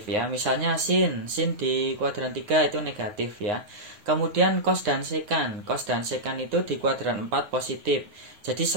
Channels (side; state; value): left; late; 9.7 ms